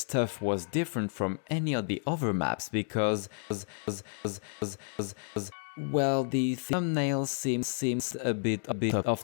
was different from any of the other maps because, well, the thumbnail seems a bit off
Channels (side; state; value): right; silent; 57 dB below the other